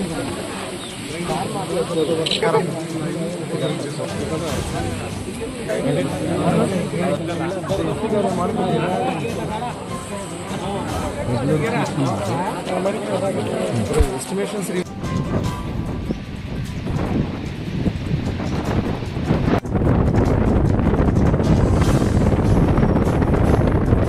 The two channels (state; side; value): identical; both; correlation 1.00